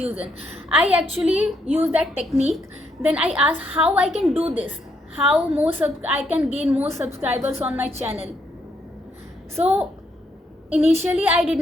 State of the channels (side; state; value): both; normal; correlation 0.75